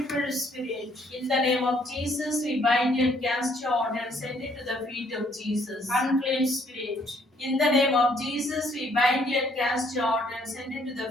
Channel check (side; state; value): both; normal; correlation 0.66